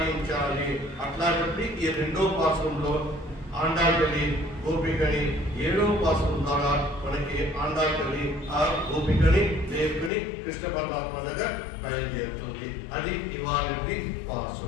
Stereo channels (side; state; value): right; drops out; at 10.1 s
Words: అట్లా చెప్పి ఈ రెండో పాసురంలో ఆండాల్ తల్లి గోపికని ఏడో పాసురం ద్వారా మనకి ఆండాల్ తల్లి ఆ గోపికని లేపుకుని కృష్ణ పరమాత్మ దగ్గర బయలుదేరుతుంది. అది ఇవాళ